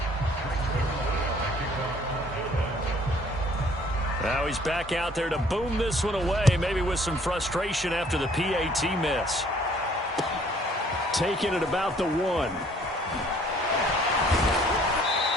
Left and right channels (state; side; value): normal; both; correlation 0.58